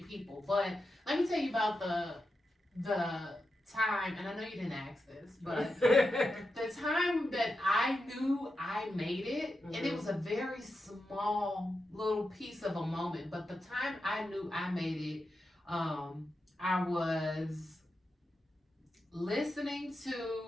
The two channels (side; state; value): both; normal; correlation 0.89